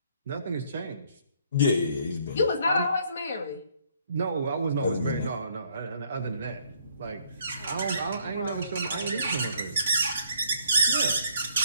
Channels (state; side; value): inverted; both; correlation -0.65